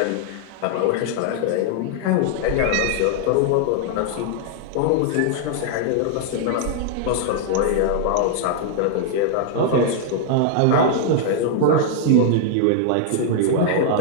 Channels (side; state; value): both; different; correlation 0.00